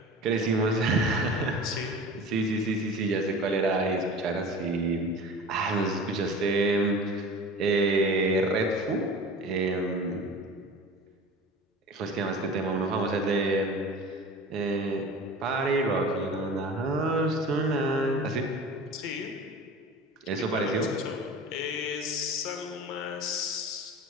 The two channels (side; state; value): both; normal; correlation 0.37